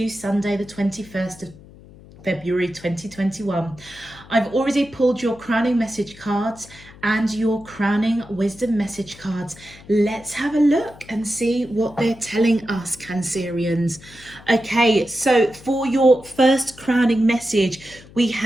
Sunday, the 21st of February 2021. I've already pulled your crowning message cards and your crowning wisdom message cards. Let's have a look and see what they're telling us, Cancerians. Okay, so for your first crowning message, we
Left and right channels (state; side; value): noise; left; hum, 21 dB below the sound